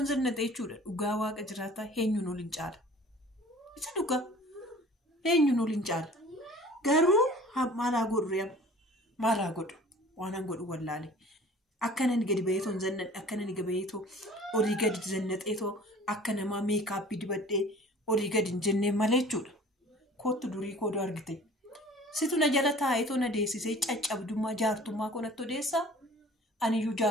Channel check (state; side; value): normal; both; correlation 0.47